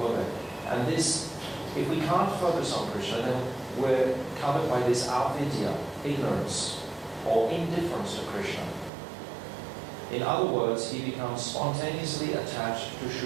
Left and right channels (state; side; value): drops out; left; at 8.9 s